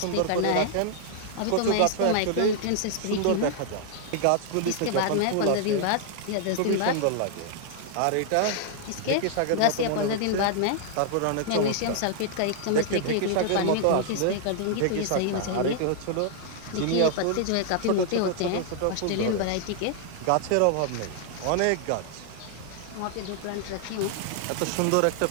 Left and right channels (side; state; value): both; different; correlation 0.00